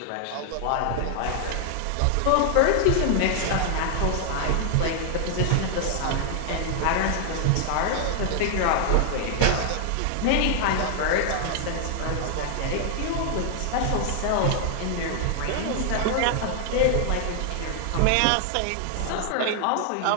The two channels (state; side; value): different; both; correlation 0.00